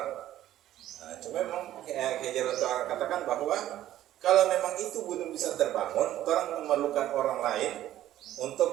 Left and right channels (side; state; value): left; quieter; 13.1 dB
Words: Nah, cuma memang Hajar katakan bahwa kalau memang itu belum bisa terbangun, orang memerlukan orang lain